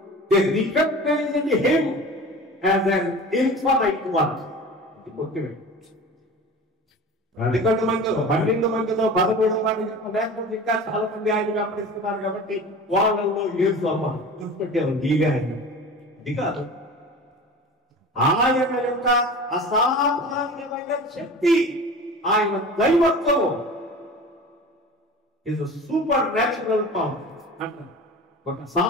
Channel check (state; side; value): normal; both; correlation 0.36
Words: They recognized him as an infinite one. ఇది ముఖ్యమైన. అందుకంటే మందిలో 12 మందిలో 13 మంది లేకపోతే ఇంకా చాలా మంది ఆయన వెంబడిస్తున్నారు కాబట్టి వాళ్ళలో యేసు అమ్మ గుర్తుపెట్టారు. ఈగా అది కాదు, ఆయన యొక్క అసాధారణమైన శక్తి, ఆయన దైవత్వం ఇస్ సూపర్ న్యాచురల్ పవర్ అంటారు. ఒక